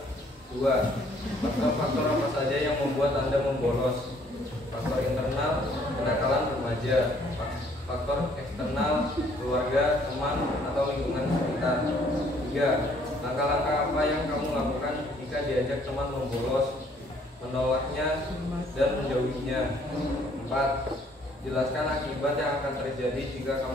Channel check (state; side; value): normal; both; correlation 0.62